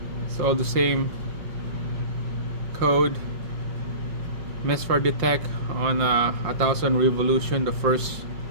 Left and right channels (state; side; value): late; left; 5.7 ms